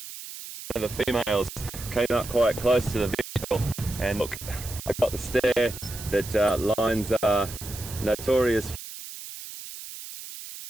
The females came up quite close to the vehicle, and look, I got the stare that lions are notorious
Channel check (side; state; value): right; noise; hiss, 12 dB below the sound